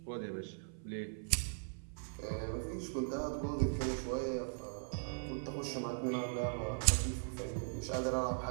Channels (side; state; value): left; silent; 52 dB below the other